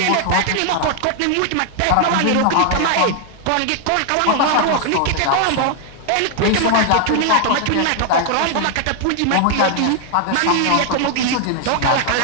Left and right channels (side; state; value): both; different; correlation 0.00